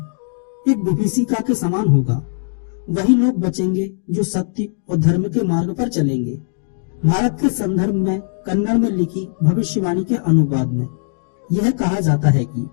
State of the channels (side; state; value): right; silent; digital silence